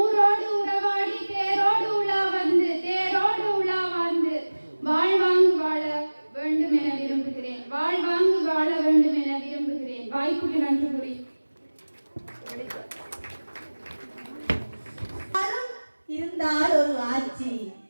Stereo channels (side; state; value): both; inverted; correlation -1.00